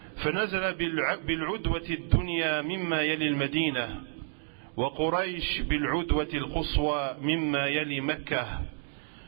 فنزل بالعدوة الدنيا مما يلي المدينة وقريش بالعدوة القصوى مما يلي مكة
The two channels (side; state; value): left; silent; digital silence